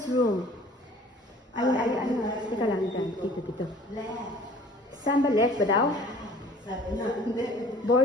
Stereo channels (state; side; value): normal; both; correlation 0.50